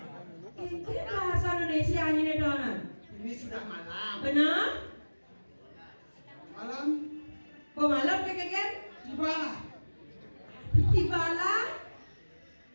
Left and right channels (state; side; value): inverted; both; correlation -1.00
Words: bahasa Indonesia ini donan. Ini sudah malam. Benar? Malam. Pemalam keken? Gimana? Tibala.